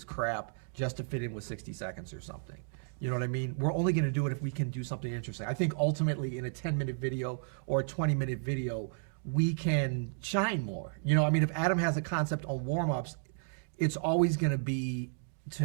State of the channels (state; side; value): silent; left; digital silence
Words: crap just to fit in with 60 seconds or something. You know what I mean? We're only going to do it if we can do something interesting. I think ultimately in a 10-minute video or a 20-minute video, we can shine more. You know, I mean, if Adam has a concept on warm-ups, it's always going to be, to